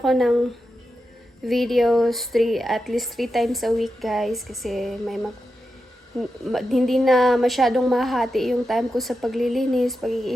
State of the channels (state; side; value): normal; both; correlation 0.89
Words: ng videos at least 3 times a week, guys, kasi hindi na masyadong mahati yung time ko sa paglilinis,